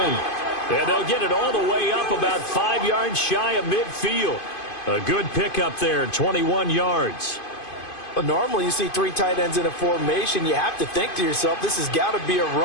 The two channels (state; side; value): late; right; 2.5 ms